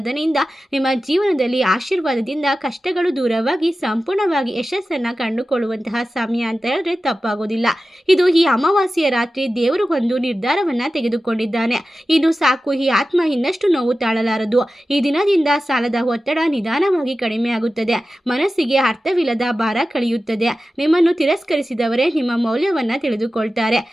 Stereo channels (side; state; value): both; normal; correlation 0.94